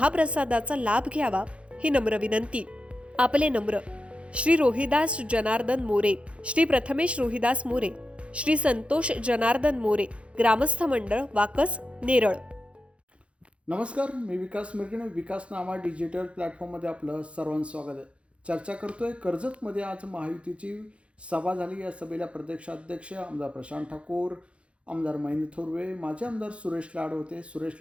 लाभ घ्यावा ही नम्र विनंती. आपले नम्र श्री रोहिदास जनार्दन मोरे, श्री प्रथमेश रोहिदास मोरे, श्री संतोष जनार्दन मोरे, ग्रामस्थ मंडळ, वाकस, नेरळ. नमस्कार, मी विकास मिरगणे. विकास नामा डिजिटल प्लॅटफॉर्ममध्ये आपलं सर्वांचं स्वागत आहे. चर्चा करतोय कर्जतमध्ये आज महायुतीची सभा झाली. या सभेला प्रदेशाध्यक्ष आमदार प्रशांत ठाकूर, आमदार महेंद्र थोरवे, माजी आमदार सुरेश लाड होते.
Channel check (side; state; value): left; late; 0.060 ms